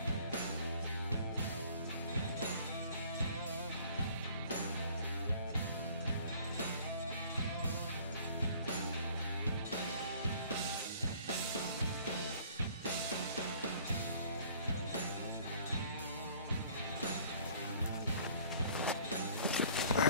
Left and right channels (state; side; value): inverted; both; correlation -0.54